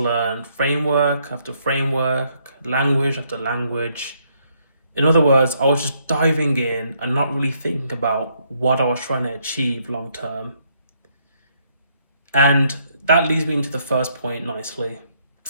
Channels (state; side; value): inverted; both; correlation -0.72